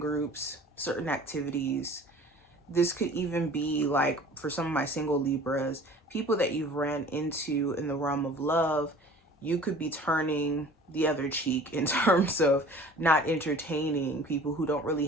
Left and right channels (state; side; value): normal; both; correlation 0.46